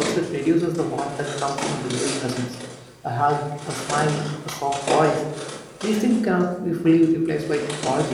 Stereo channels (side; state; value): both; identical; correlation 1.00